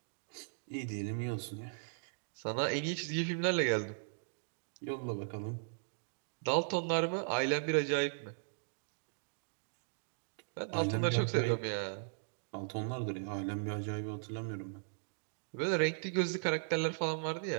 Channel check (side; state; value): left; silent; digital silence